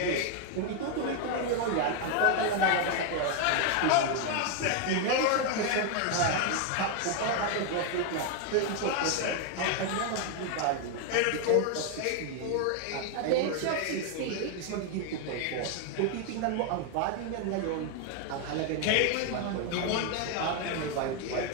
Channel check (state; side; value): different; both; correlation 0.01